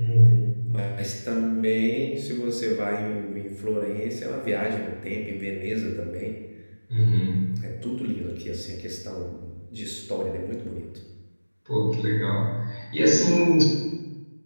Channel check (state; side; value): inverted; both; correlation -1.00